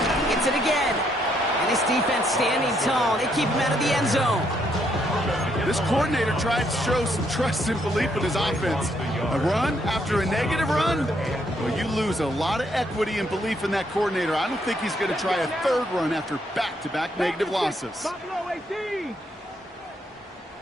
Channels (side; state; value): both; normal; correlation 0.73